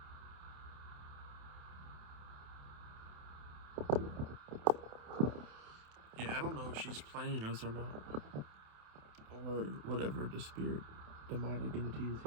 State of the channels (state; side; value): late; left; 28 ms